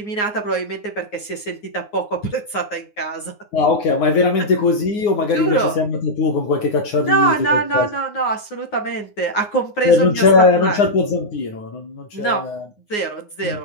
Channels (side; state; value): right; late; 9.6 ms